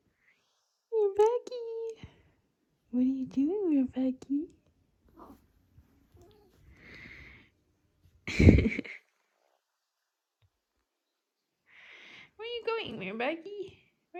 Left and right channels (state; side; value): identical; both; correlation 1.00